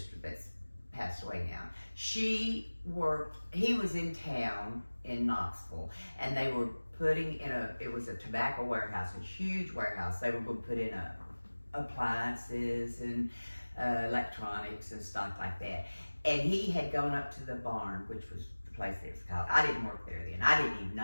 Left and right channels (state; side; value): inverted; both; correlation -1.00